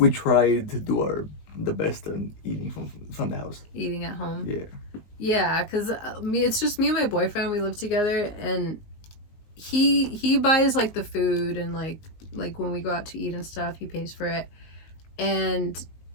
try to do the best on eating from the house. Eating at home. Yeah. Yeah, because it's just me and my boyfriend. We live together, and he buys like the food, and like when we go out to eat and stuff, he pays for it. And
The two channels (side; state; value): right; late; 19 ms